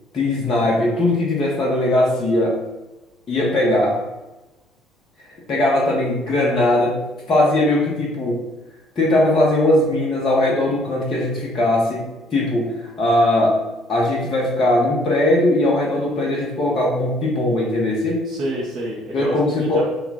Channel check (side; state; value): both; normal; correlation 0.63